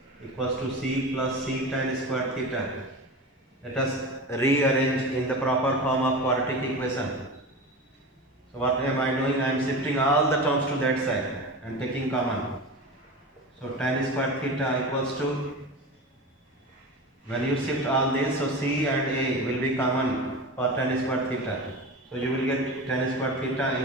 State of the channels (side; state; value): both; normal; correlation 0.29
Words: equals to c plus c tan square theta. Let us rearrange in the proper form of quadratic equation. So what am I doing? I am shifting all the terms to that side and taking common. So tan square theta equals to, when you shift all this, so c and a will be common for tan square theta. So you will get tan square theta